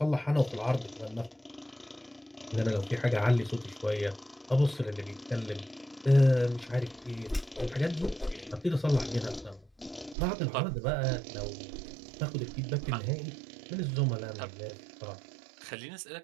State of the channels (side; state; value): left; drops out; at 10.2 s